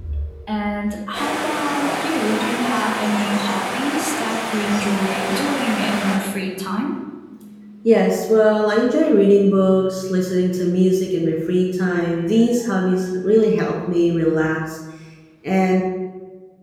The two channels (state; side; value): identical; both; correlation 1.00